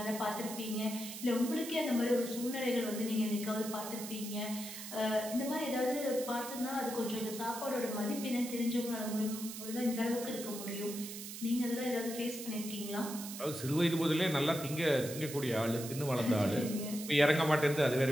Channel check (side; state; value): right; noise; hiss, 10 dB below the sound